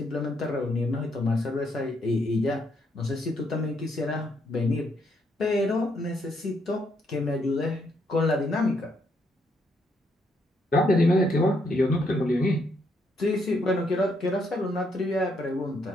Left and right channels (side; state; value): both; normal; correlation 0.74